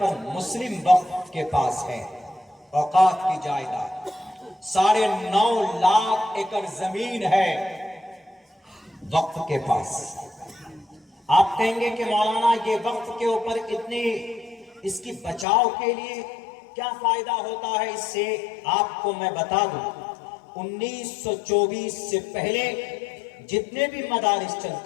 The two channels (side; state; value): right; drops out; at 15.5 s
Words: مسلم وقف کے پاس ہے اوقات کی جائیداد۔ 9.5 لاکھ ایکڑ زمین ہے وقف کے پاس۔ آپ کہیں گے کہ مولانا یہ وقف کے اوپر اتنی اس کی بچاؤ کے لیے کیا فائدہ ہوتا ہے اس سے؟ آپ کو میں بتا دوں، 1924 سے پہلے جتنے بھی مدارس